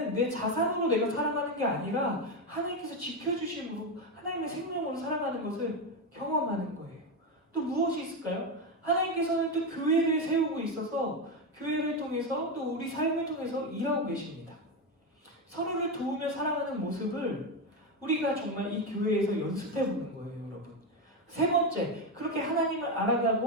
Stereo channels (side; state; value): both; normal; correlation 0.11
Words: 내 자산으로 내가 살아가는 게 아니라 하나님께서 지켜주심으로 하나님의 생명으로 살아가는 것을 경험하는 거예요. 또 무엇이 있을까요? 하나님께서는 또 교회를 세우고 있어서 교회를 통해서 또 우리 삶을 통해서 일하고 계십니다. 서로를 도우며 살아가는 모습을 우리가 정말 이 교회에서 연습해 보는 거예요, 여러분. 세 번째, 그렇게 하나님을